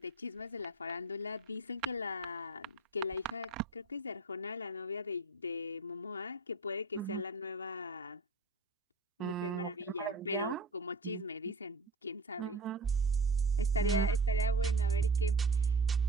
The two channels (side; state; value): left; quieter; 3.1 dB